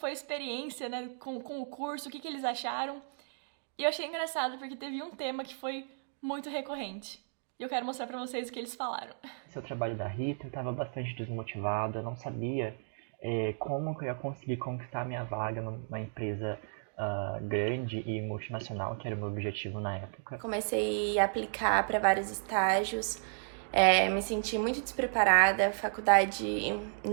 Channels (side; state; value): left; silent; digital silence